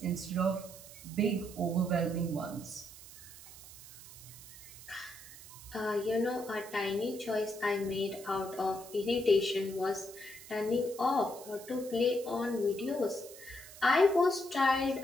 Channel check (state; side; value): noise; right; hiss, 17 dB below the sound